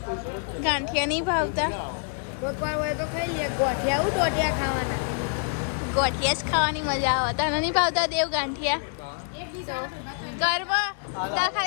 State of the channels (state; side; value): silent; right; 57 dB below the other